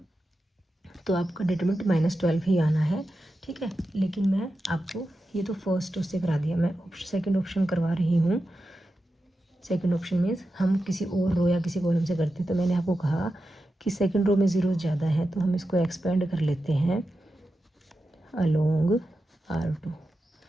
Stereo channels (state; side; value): normal; both; correlation 0.91